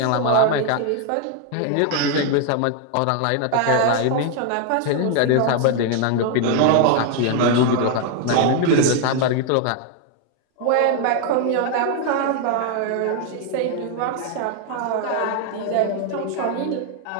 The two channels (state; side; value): different; both; correlation 0.01